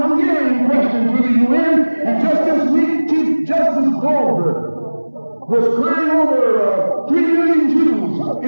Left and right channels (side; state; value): both; inverted; correlation -1.00